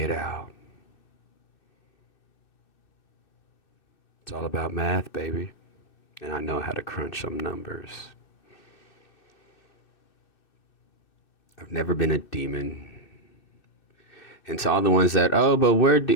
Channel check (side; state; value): right; late; 2.6 ms